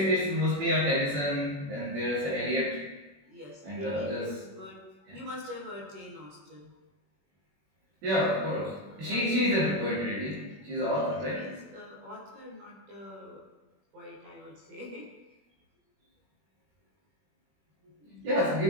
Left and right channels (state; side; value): late; left; 21 ms